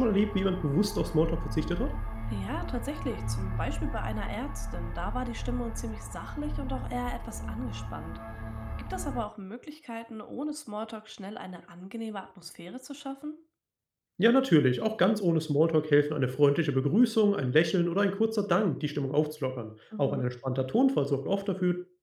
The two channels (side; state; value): both; identical; correlation 1.00